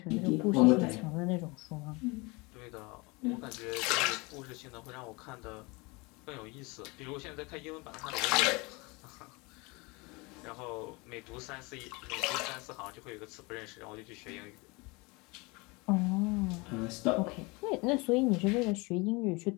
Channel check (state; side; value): quieter; right; 26.7 dB